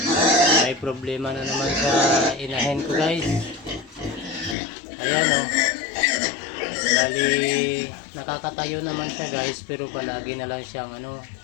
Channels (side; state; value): right; drops out; at 4.5 s